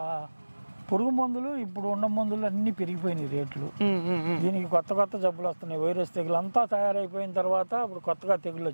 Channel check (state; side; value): inverted; both; correlation -1.00